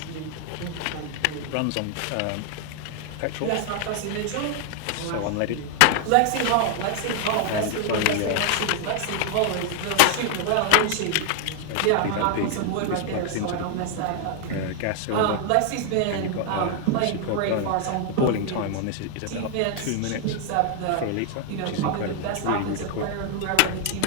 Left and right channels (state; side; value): different; both; correlation 0.00